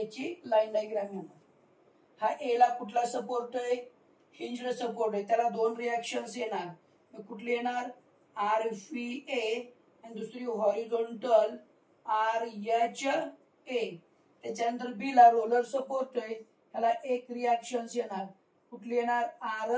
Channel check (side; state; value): both; identical; correlation 1.00